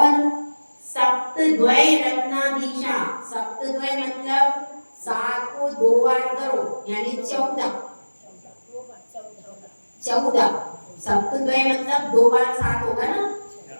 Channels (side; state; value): both; inverted; correlation -1.00